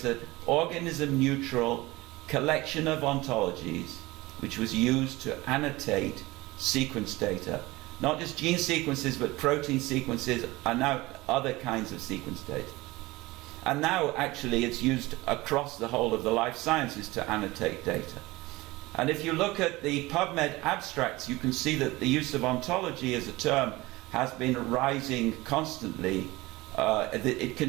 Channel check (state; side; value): quieter; left; 20.4 dB